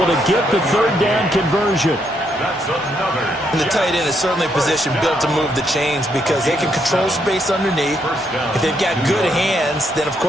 to get the 3rd down conversion. That's another. And the tight end is certainly a position built to move the chains because they can control space underneath. If they've got good hands, then of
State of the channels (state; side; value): normal; both; correlation 0.76